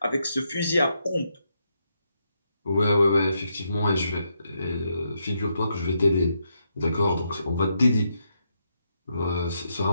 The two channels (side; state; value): both; inverted; correlation -0.80